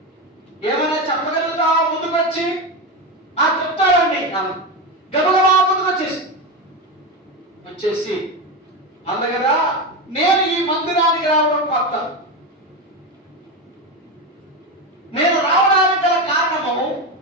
ఏమైనా చెప్పగలుగుతావా? ముందుకు వచ్చి చెప్తాడండి అన్న. గబగబా ముందుకు వచ్చేసి అంది కదా, నేను ఈ మందిరానికి రావడం కొత్త. నేను రావడానికి గల కారణము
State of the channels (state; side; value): normal; both; correlation 0.17